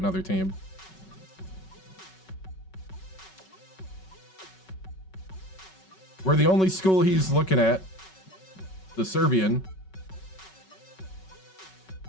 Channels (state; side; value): late; right; 5.3 ms